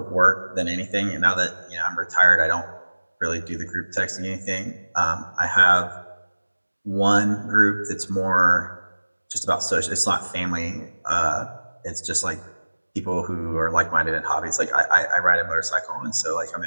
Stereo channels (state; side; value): inverted; both; correlation -1.00